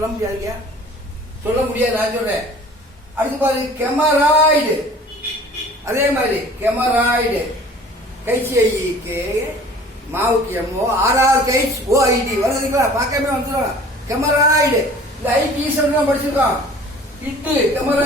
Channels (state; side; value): normal; both; correlation 0.47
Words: முடியாதுங்க, சொல்ல முடியாது. நான் சொல்றேன். அடுத்து பாருங்க கெமராய்டு. அதே மாதிரி கெமராய்டு கைசிஐக்கு மாவுக்கு எம்மோ ஆர்ஆர் கைஸ் ஓஐடி வருதுங்களா? பார்க்கவே வந்துடும். கெமராய்டு இந்த ஐடி ஈஸ்வரன் படிச்சிருக்கோம். இட்டு